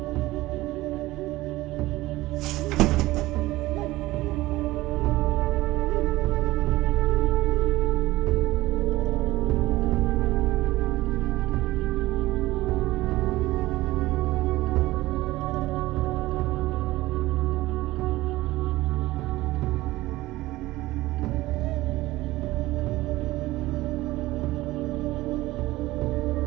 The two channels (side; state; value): left; quieter; 18.0 dB